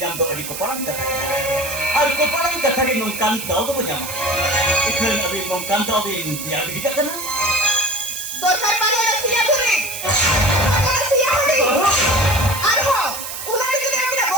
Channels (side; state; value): right; noise; hiss, 7 dB below the sound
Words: jam do adi ko parang katha. Ar ko parang katha ge nongkan daw do panyama. Ikhan abi nongkan daw de dia bidika kana. Dorkar pada siya guri. Siya guri. Arho, ular itu dia tidak